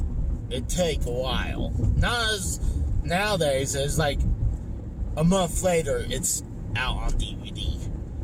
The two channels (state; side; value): identical; both; correlation 1.00